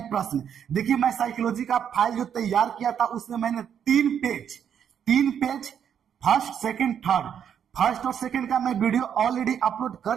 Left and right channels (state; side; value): quieter; left; 8.5 dB